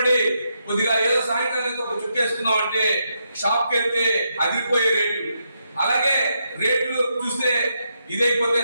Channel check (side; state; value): both; inverted; correlation -0.81